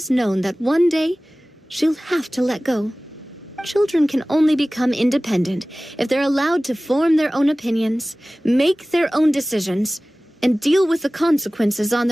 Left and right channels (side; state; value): both; normal; correlation 0.98